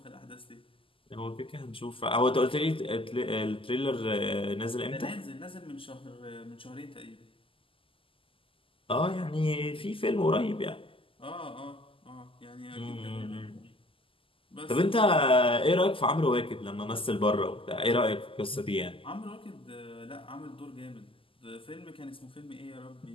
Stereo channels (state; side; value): late; right; 0.25 ms